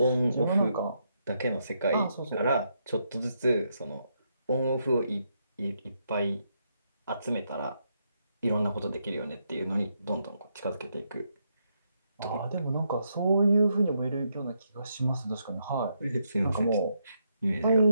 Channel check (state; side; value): inverted; both; correlation -0.79